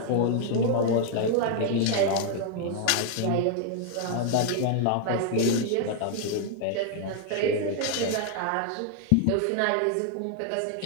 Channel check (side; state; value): both; different; correlation 0.00